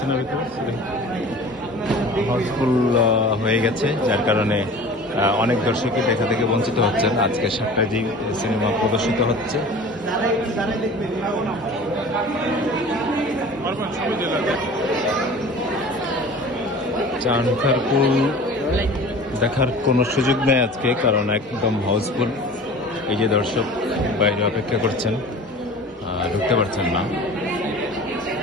না ভিতরে, হাউসফুল হয়ে গেছে, যার কারণে অনেক দর্শকই দেখা থেকে বঞ্চিত হচ্ছেন। আজকে 7টায় যে সিনেমা প্রদর্শিত হচ্ছে, সানখারপুল দেখার কোনো সুযোগ নেই আজকে, কারণ একদম হাউসফুল। এই যে দর্শক বাইরে অপেক্ষা করছেন, ঢুকতে পারছেন না।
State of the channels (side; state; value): both; normal; correlation 0.41